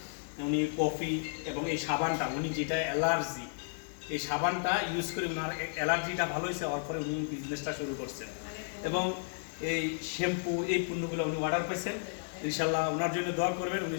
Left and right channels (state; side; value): silent; right; 56 dB below the other